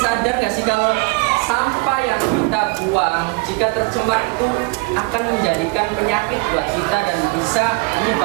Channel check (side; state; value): left; quieter; 27.9 dB